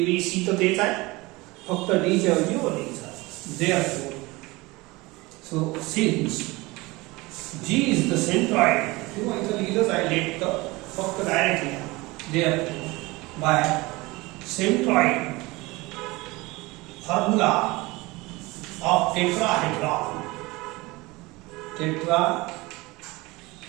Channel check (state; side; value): quieter; left; 22.4 dB